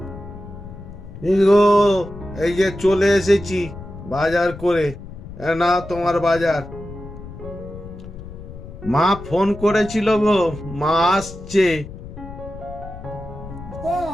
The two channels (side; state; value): left; noise; rumble, 13 dB below the sound